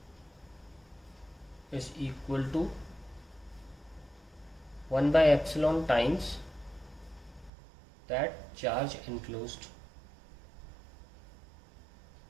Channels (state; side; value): drops out; left; at 7.5 s